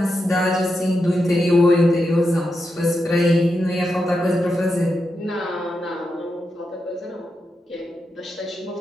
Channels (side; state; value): both; normal; correlation 0.86